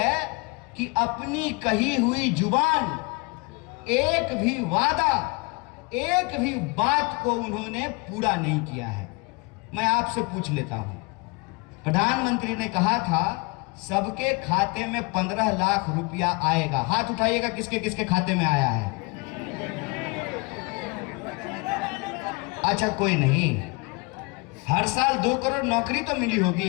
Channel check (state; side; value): quieter; right; 28.1 dB